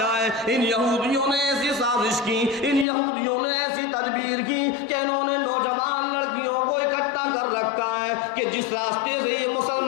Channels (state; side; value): drops out; right; at 2.9 s